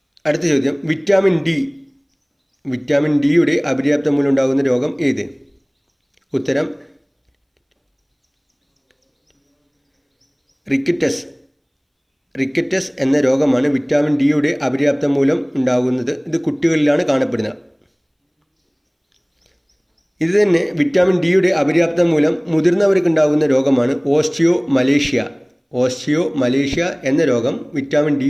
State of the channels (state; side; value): identical; both; correlation 1.00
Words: അടുത്ത ചോദ്യം, വിറ്റാമിൻ ഡിയുടെ അപര്യാപ്തത മൂലമുണ്ടാകുന്ന രോഗം ഏത്? ഉത്തരം റിക്കറ്റസ് എന്ന രോഗമാണ് വിറ്റാമിൻ ഡിയുടെ അപര്യാപ്തത മൂലം ഉണ്ടാകുന്നത്. ഇത് കുട്ടികളിലാണ് കാണപ്പെടുന്നത്. ഇത് തന്നെ വിറ്റാമിൻ ഡിയുടെ അപര്യാപ്തത മൂലം മുതിർന്നവർക്ക് ഉണ്ടാകുന്ന രോഗമാണ് ഓസ്റ്റിയോമലേഷ്യ എന്ന രോഗം വിറ്റാമിൻ